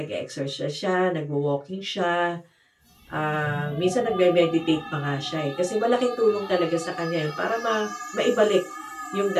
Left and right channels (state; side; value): identical; both; correlation 1.00